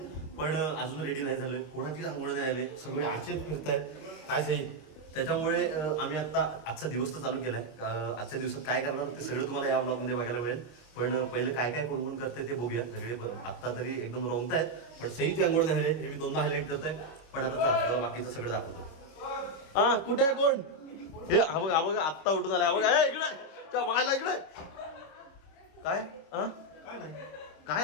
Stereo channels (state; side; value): late; right; 26 ms